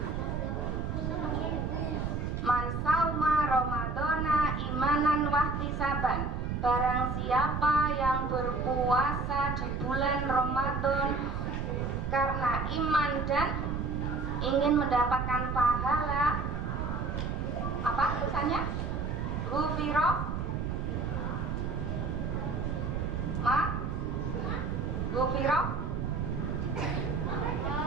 Man sauma Ramadana imanan wahtisaban. Barang siapa yang berpuasa di bulan Ramadan karena iman dan ingin mendapatkan pahala, apa tulisannya? Ghufiro ma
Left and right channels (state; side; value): noise; right; rumble, 2 dB below the sound